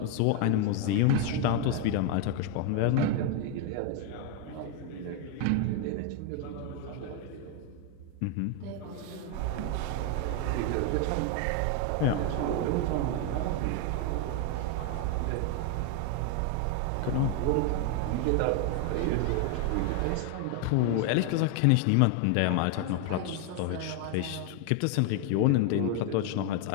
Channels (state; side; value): different; both; correlation 0.01